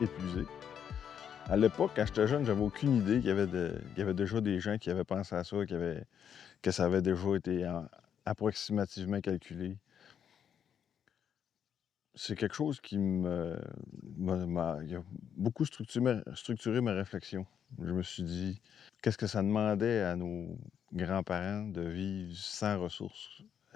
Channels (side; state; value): right; quieter; 8.4 dB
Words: épuisé. À l'époque, quand j'étais jeune, j'avais aucune idée qu'il y avait déjà des gens qui avaient pensé à ça, que ça avait déjà été approximativement calculé. C'est quelque chose qui il a beaucoup structuré ma réflexion. Je me suis dit, qu'est-ce que ça demandait à nos grands-parents de vivre sans ressources